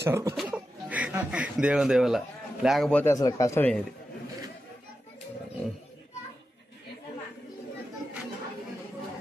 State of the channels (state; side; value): normal; both; correlation 0.90